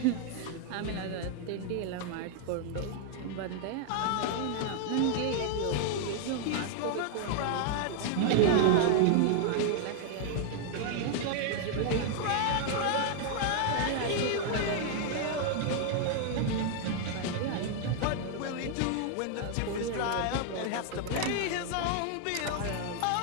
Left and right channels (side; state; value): both; different; correlation 0.00